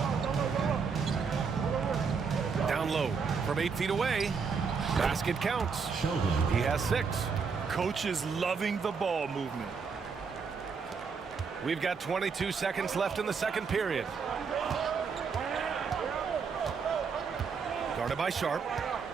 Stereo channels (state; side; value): quieter; left; 5.6 dB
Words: Down low from 8 feet away. Basket counts. He has 6. Coach is loving the ball movement. We've got 22 seconds left in the second period. Guarded by Sharp.